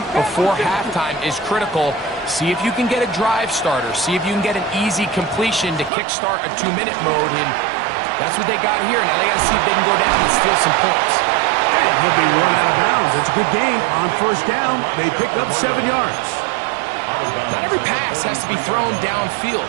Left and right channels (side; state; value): left; drops out; at 5.9 s